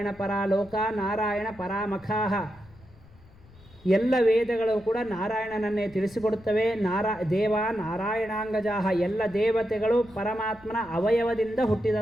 ಪರಾ ಲೋಕ ನಾರಾಯಣ ಪರಾಮಖಾಹ. ಎಲ್ಲ ವೇದಗಳು ಕೂಡ ನಾರಾಯಣನನ್ನೇ ತಿಳಿಸಿಕೊಡುತ್ತವೆ. ದೇವ ನಾರಾಯಣಾಂಗಜಾಹ, ಎಲ್ಲ ದೇವತೆಗಳು ಪರಮಾತ್ಮನ ಅವಯವದಿಂದ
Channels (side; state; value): left; noise; rumble, 24 dB below the sound